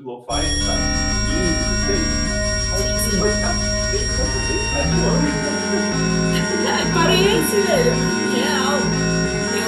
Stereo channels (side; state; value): both; identical; correlation 1.00